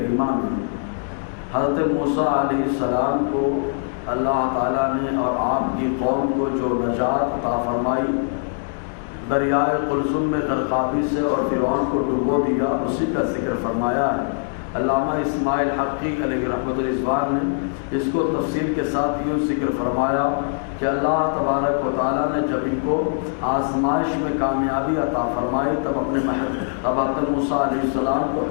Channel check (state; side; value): silent; right; digital silence